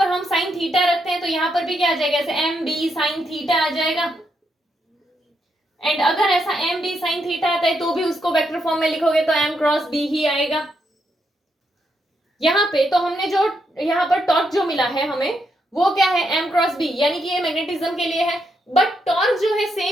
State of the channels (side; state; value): both; normal; correlation 0.80